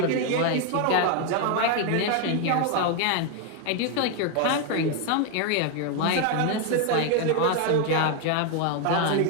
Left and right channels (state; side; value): different; both; correlation 0.01